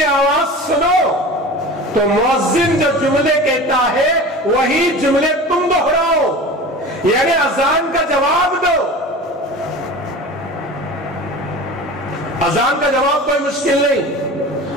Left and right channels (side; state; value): both; normal; correlation 0.35